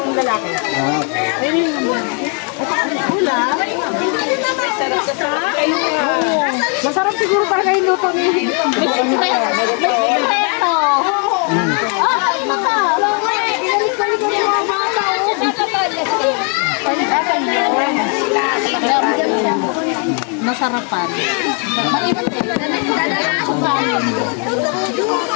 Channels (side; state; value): right; quieter; 39.5 dB